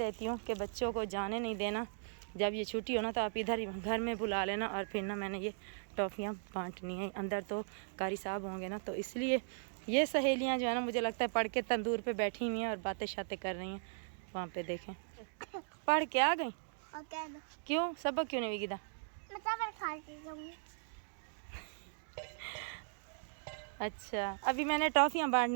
हूँ कि बच्चों को जाने नहीं देना, जब ये छुट्टी हो ना तो आप इधर ही घर में बुला लेना। और फिर ना मैंने ये टॉफ़ियाँ बांटनी है, अंदर तो कारी साहब होंगे ना, तो इसलिए ये सहेलियाँ जो है ना मुझे लगता है पढ़ के तंदूर पे बैठी हुई हैं और बातें शातें कर रही हैं। वहाँ पे देखें पढ़ के आ गई। क्यों सबक क्यों नहीं विदा? अच्छा अभी मैंने टॉफ़ियाँ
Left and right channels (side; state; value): left; silent; digital silence